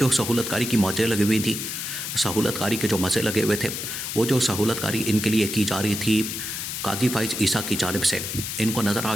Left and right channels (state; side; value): noise; left; hiss, 5 dB below the sound